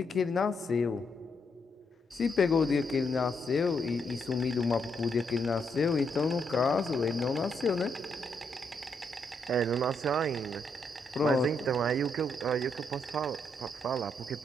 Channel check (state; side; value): normal; both; correlation 0.77